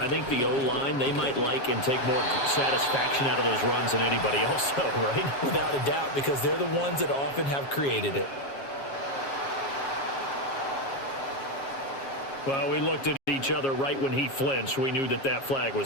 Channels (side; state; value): right; late; 7.3 ms